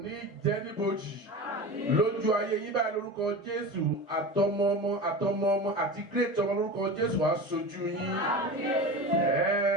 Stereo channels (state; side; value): normal; both; correlation 0.29